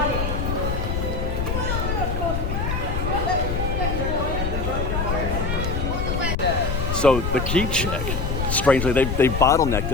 So the key check, strangely, they bottlenecked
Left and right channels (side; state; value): left; noise; rumble, 1 dB below the sound